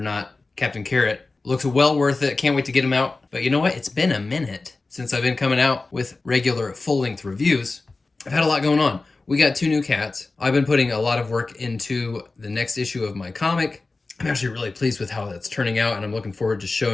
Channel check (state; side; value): quieter; right; 3.5 dB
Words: Captain Carrot looks well worth it. Can't wait to get him out. But you know what? It's been a minute since I've been coming out with regular full-length reviews. I've had a lot going on. We got 2 new cats. I've been putting a lot of work into the next issue of my comic. I'm actually really pleased with how that's turning out, and I'm looking forward to